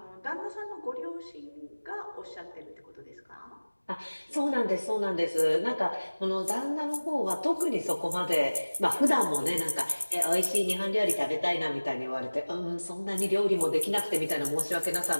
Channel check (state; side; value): inverted; both; correlation -1.00